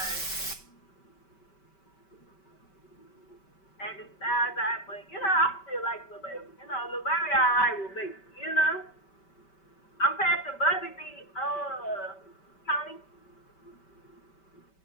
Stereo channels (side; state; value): right; late; 5.2 ms